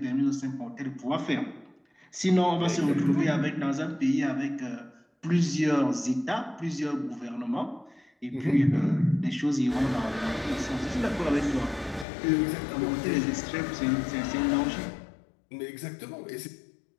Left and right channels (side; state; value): right; drops out; at 12.1 s